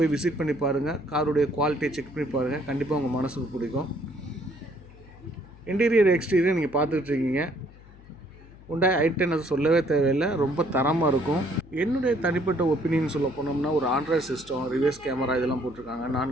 விசிட் பண்ணி பாருங்கள், காருடைய குவாலிட்டியை செக் பண்ணி பாருங்கள், கண்டிப்பாக உங்கள் மனசுக்கு பிடிக்கும். இன்டீரியர் எக்ஸ்டீரியர் நீங்கள் பார்த்துட்ருக்கீங்க. ஹுண்டாய் i10 அது சொல்லவே தேவையில்லை, ரொம்ப தரமாக இருக்கும். என்னுடைய தனிப்பட்ட ஒப்பீனியன் சொல்ல போனோம்னா, ஒரு ஆண்ட்ராய்டு சிஸ்டம், ரிவர்ஸ் கேமரா இதெல்லாம் போட்டிருக்காங்க.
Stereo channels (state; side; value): noise; left; hum, 21 dB below the sound